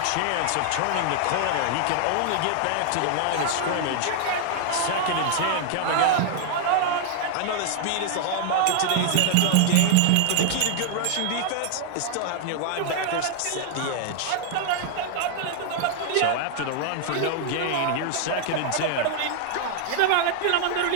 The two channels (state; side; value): different; both; correlation 0.00